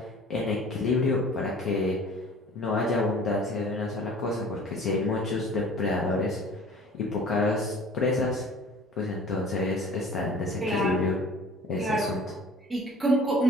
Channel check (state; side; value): normal; both; correlation 0.47